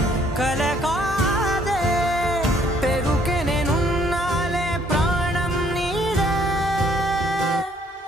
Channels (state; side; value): normal; both; correlation 0.63